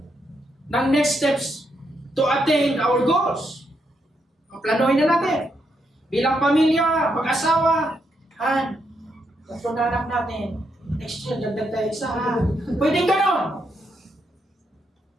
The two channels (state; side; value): normal; both; correlation 0.79